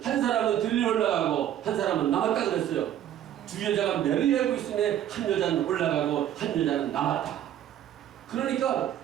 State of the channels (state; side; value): quieter; left; 11.2 dB